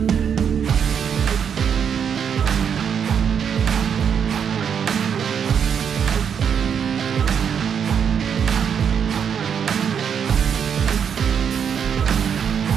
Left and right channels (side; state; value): left; quieter; 7.6 dB